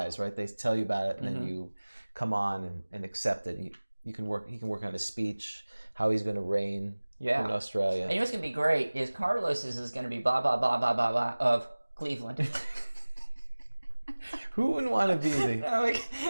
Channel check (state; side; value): inverted; both; correlation -1.00